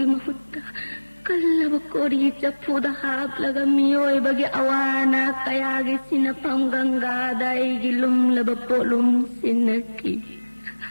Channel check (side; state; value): both; inverted; correlation -1.00